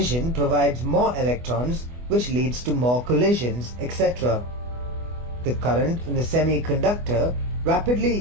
provides more electrons, which leads to more collisions, etc. The current in the semiconductor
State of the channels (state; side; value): late; left; 24 ms